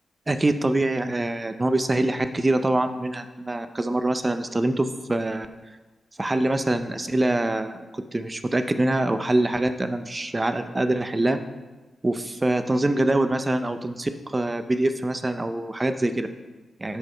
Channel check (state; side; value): normal; both; correlation 0.97